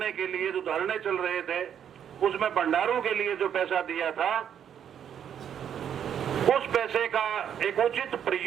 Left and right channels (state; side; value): quieter; left; 8.9 dB